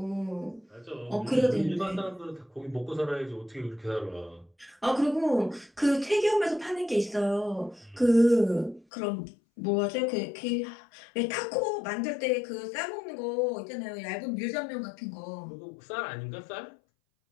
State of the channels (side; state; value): right; drops out; at 8.8 s